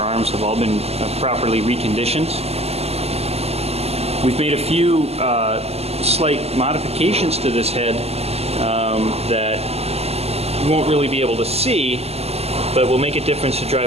have all been properly reconditioned. We've made a few slight modifications to this head that you won't really be able to see, but will make a difference to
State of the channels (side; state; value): left; late; 0.30 ms